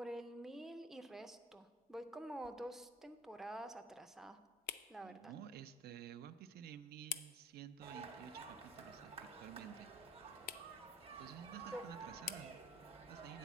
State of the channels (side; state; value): both; normal; correlation 0.46